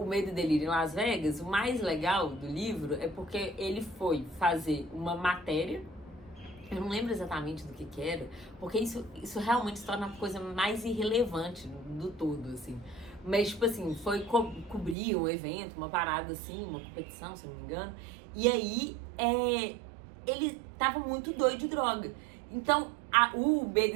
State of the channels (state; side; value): drops out; left; at 15.0 s